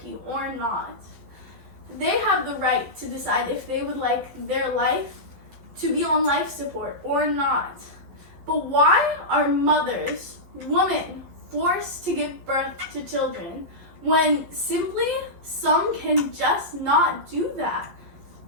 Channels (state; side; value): late; left; 11 ms